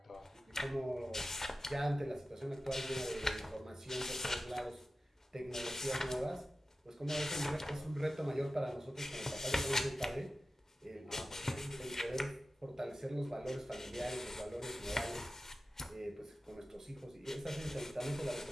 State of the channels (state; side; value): normal; both; correlation 0.94